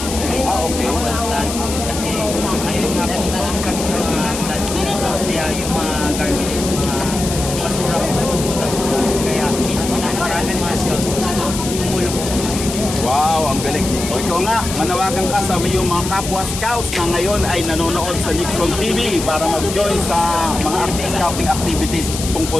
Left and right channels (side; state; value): left; noise; hiss, 7 dB below the sound